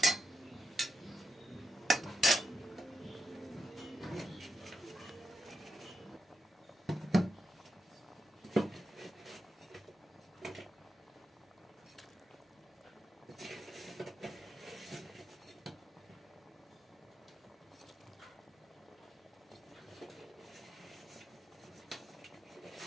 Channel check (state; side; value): normal; both; correlation 0.87